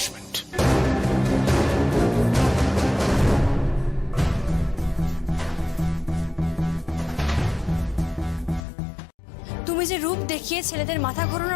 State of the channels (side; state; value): right; drops out; at 8.7 s